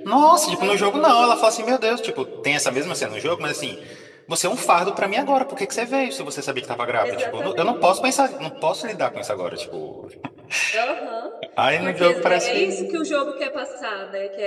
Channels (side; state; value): both; identical; correlation 1.00